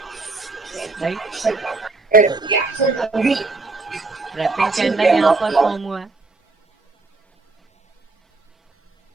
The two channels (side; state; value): left; quieter; 3.6 dB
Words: राइट। ट्रैपिंग कैंडल यहाँ पर फॉर्म हुआ है,